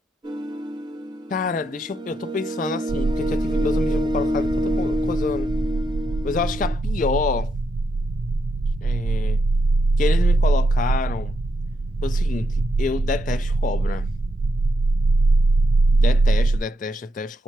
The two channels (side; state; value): both; normal; correlation 0.82